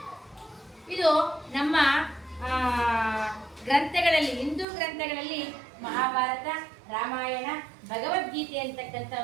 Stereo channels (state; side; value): drops out; left; at 4.7 s